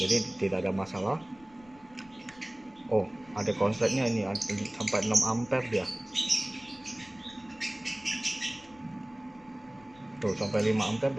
tidak ada masalah. Oh, ada konsletnya ini sampai 6 ampere dia. Tuh, sampai 5 ampere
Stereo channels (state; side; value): noise; left; rumble, 27 dB below the sound